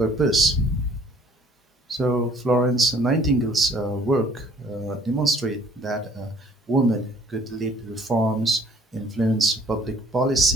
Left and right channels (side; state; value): both; normal; correlation 0.57